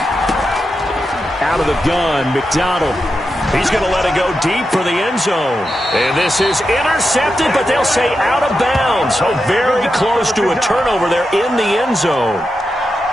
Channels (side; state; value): both; normal; correlation 0.88